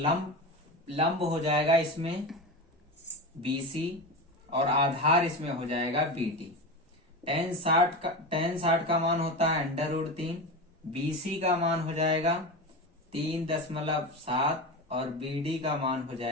लंब हो जाएगा इसमें BC और आधार इसमें हो जाएगा BD। tan 60 का मान होता है √3, BC का मान हो जाएगा 3.7 और BD का मान हो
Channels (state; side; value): normal; both; correlation 0.23